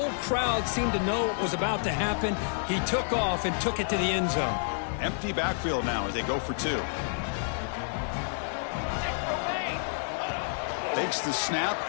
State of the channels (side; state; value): right; silent; digital silence